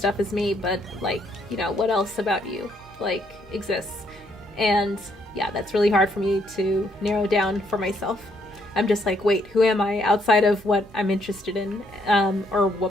as me, but like, you know, what else about you like exists? And yeah, that's really hard for me to narrow down for myself. I'm just like, wait, who am I outside of what I'm interested in, or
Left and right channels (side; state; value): both; normal; correlation 0.71